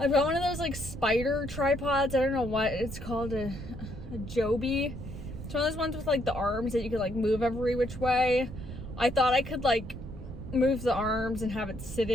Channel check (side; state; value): right; noise; rumble, 10 dB below the sound